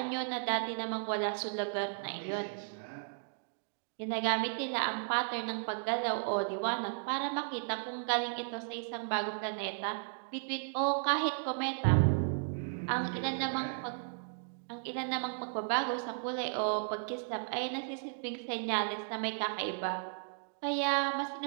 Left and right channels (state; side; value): silent; left; digital silence